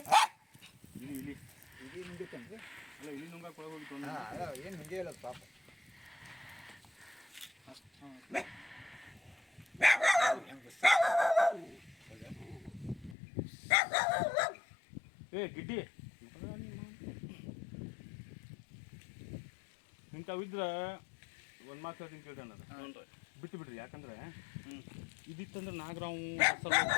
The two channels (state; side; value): drops out; right; at 13.2 s